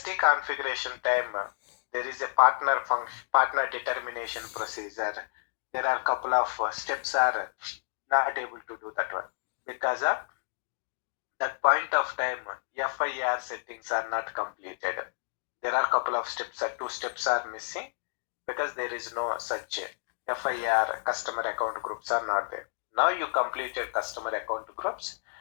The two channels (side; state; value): right; silent; digital silence